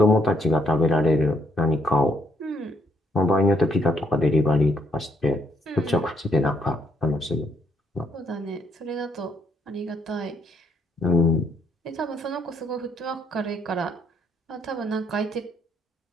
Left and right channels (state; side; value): normal; both; correlation 0.71